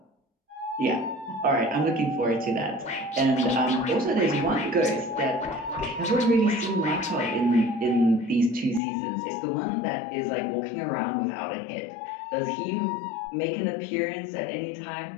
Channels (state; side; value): drops out; right; at 8.8 s